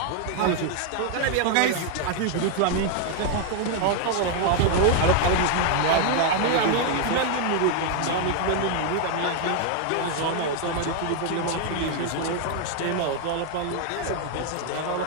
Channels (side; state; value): both; different; correlation 0.00